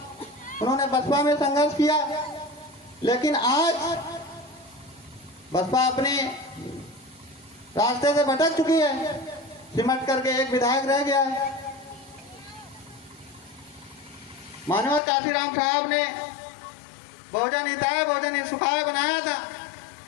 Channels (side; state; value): right; drops out; at 15.0 s